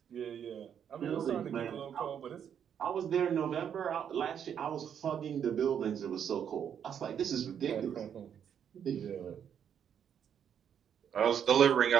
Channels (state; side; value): quieter; left; 8.5 dB